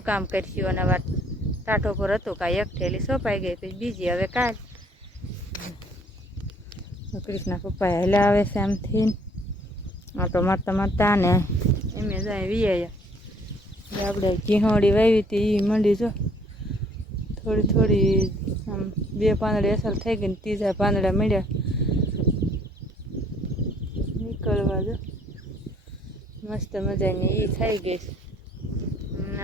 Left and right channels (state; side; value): normal; both; correlation 0.61